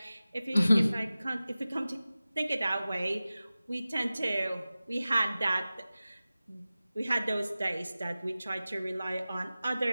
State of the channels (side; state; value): both; inverted; correlation -0.96